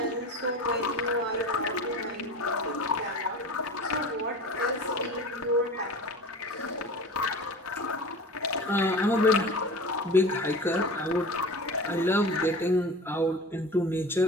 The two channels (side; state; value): both; normal; correlation 0.34